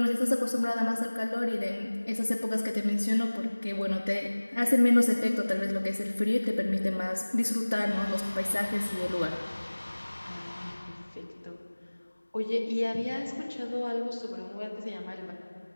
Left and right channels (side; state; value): both; inverted; correlation -1.00